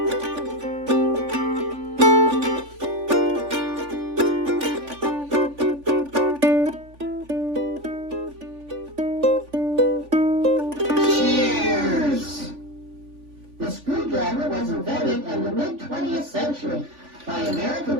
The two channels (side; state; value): left; late; 3.5 ms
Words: Was invented in the mid-20th century by American